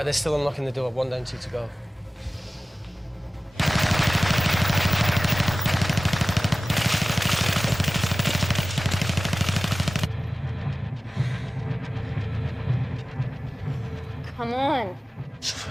they're still unlocking the door. 1 down, 2 to go. Come on.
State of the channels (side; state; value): both; normal; correlation 0.97